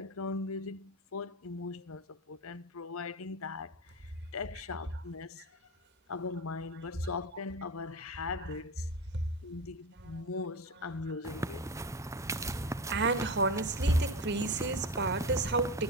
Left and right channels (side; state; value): both; normal; correlation 0.23